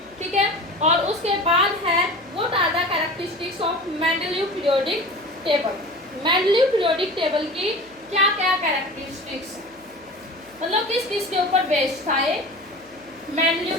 ठीक है, और उसके बाद है what are the characteristics of Mendeleev periodic table. Mendeleev periodic table की क्या क्या कैरेक्टरिस्टिक्स, मतलब किस किस के ऊपर बेस्ड था ये मेंडेलीव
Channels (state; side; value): noise; left; hum, 29 dB below the sound